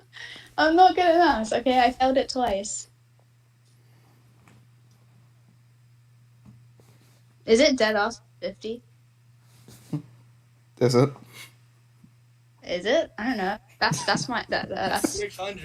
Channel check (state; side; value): identical; both; correlation 1.00